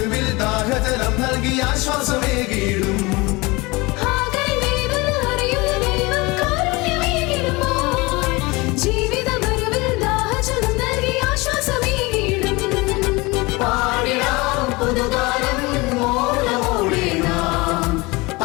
ദാഹജലം നൽകി ആശ്വാസമേകിടും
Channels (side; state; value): right; quieter; 23.9 dB